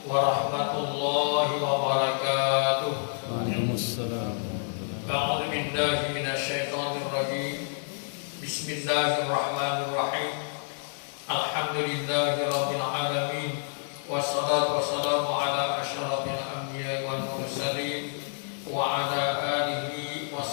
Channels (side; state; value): right; silent; 58 dB below the other